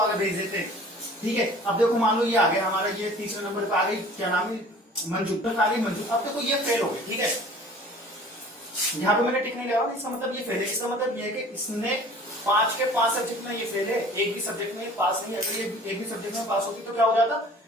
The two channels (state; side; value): normal; both; correlation 0.47